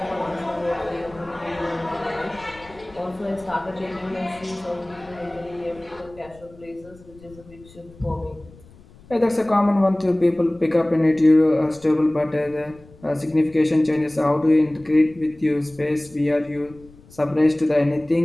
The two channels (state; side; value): noise; left; rumble, 24 dB below the sound